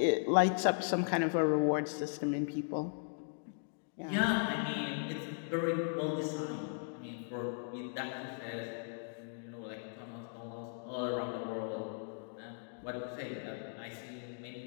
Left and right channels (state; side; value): silent; right; digital silence